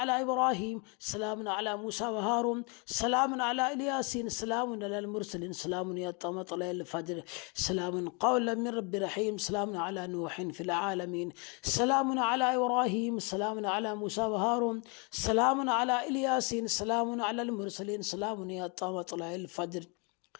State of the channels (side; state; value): right; quieter; 33.4 dB